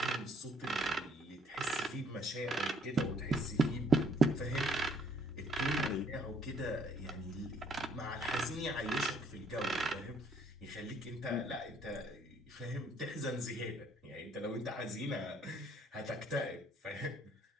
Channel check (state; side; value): normal; both; correlation 0.64